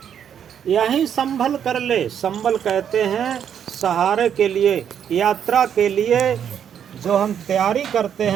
यही संभल कर ले, संभल कहते हैं सहारे के लिए, यात्रा के लिए जो हम तैयारी करते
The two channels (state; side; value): quieter; left; 8.7 dB